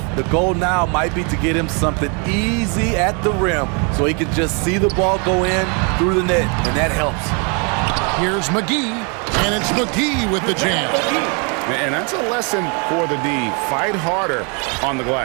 The goal now might be to get him something easy at the rim so he can just see the ball go in through the net, and that helps. Here's McGee, and it's McGee with the jam. And that's a lesson for the D. Fight harder on the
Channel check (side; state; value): left; quieter; 34.9 dB